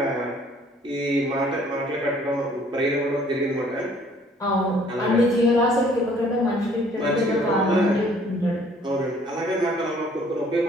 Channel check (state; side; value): normal; both; correlation 0.58